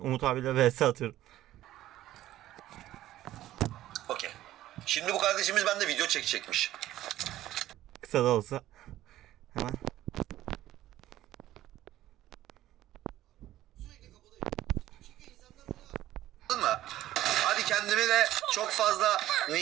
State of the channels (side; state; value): left; quieter; 14.2 dB